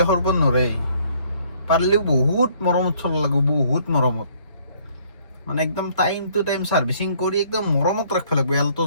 লাখৰ ওপৰত নৰে পাৰিলেও বহুত মৰমত চলাব লাগিব বহুত মৰমত মানে একদম টাইম টু টাইম সাৰ্ভিসিং কৰি একদম মৰমত ৰাখিব লাগিব এলটো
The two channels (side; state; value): both; inverted; correlation -0.62